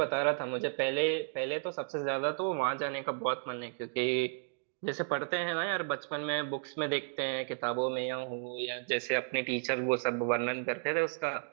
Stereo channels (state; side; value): silent; left; digital silence